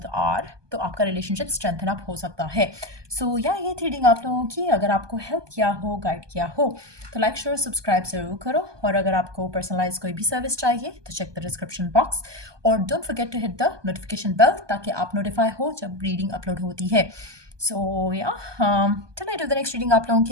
are, तो आपका रिलेशनशिप स्ट्रेंथन अप हो सकता है। सो या ये थी रीडिंग आप लोगों की। अगर आपको हेल्प किया हो, गाइड किया हो, तो लाइक शेयर सब्सक्राइब ज़रूर करो। और अगर आपको पर्सनलाइज कोई भी सर्विस चाहिए तो चेक द डिस्क्रिप्शन बॉक्स, और don't forget to hit the notification bell ताकि आप नोटिफाई हो जब रीडिंग अपलोड होती है। सो या till I do the next reading आप लोगों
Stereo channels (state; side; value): late; left; 1.2 ms